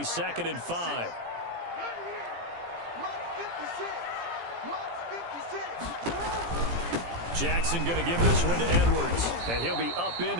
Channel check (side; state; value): left; late; 17 ms